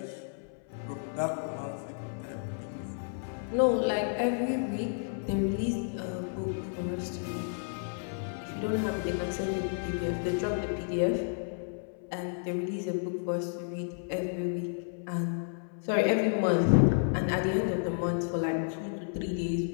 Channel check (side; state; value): right; silent; 57 dB below the other